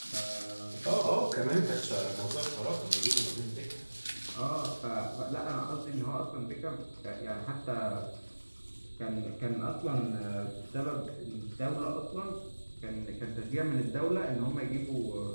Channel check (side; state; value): both; inverted; correlation -1.00